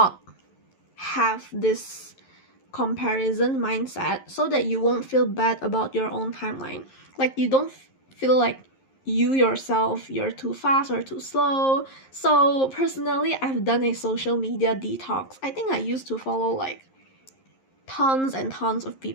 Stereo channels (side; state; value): right; late; 11 ms